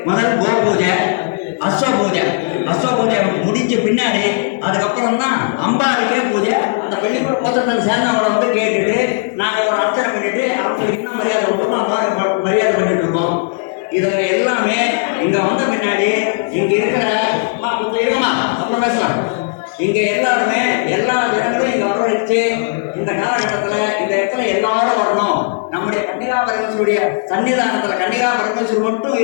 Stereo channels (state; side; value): silent; right; digital silence